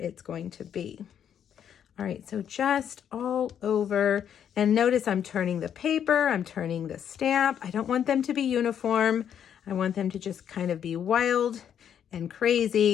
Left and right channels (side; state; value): right; quieter; 9.0 dB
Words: going to be. All right, so just all over. And notice I'm turning the paper, I'm turning the stamp. I don't want them to be uniform. I want them to just kind of be wild and